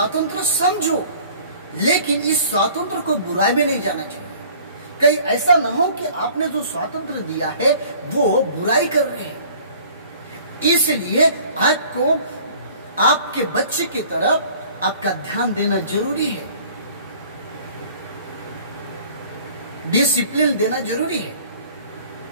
समझो, लेकिन इस स्वातंत्र को बुराई में नहीं जाना चाहिए। कहीं ऐसा ना हो कि आपने जो स्वातंत्र दिया है वो बुराई कर रहे हैं। इसलिए आपको आपके बच्चे की तरफ आपका ध्यान देना जरूरी है, डिसिप्लिन देना जरूरी है।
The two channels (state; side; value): inverted; both; correlation -0.50